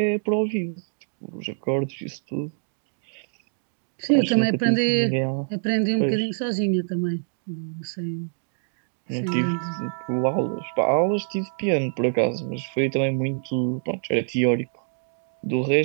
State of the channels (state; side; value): silent; left; digital silence